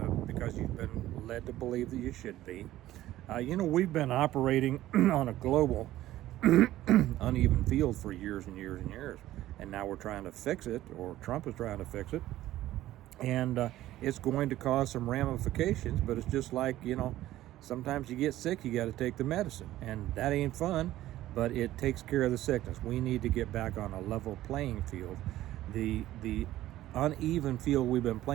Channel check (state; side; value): quieter; left; 14.7 dB